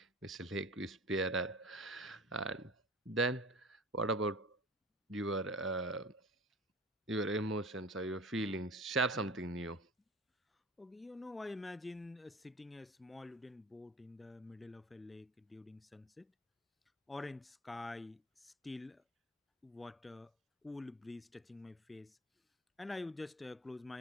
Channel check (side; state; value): both; normal; correlation 0.38